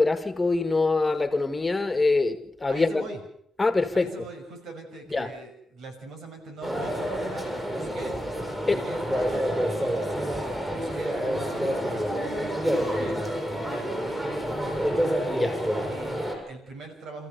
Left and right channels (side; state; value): both; normal; correlation 0.90